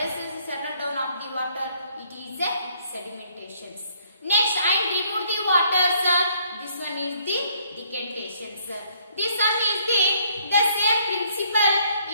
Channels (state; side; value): inverted; both; correlation -0.66